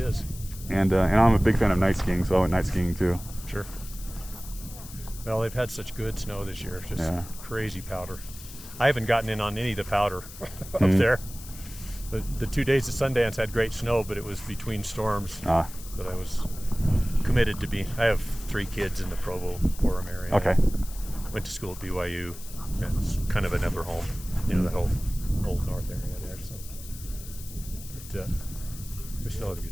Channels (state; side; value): noise; left; hiss, 15 dB below the sound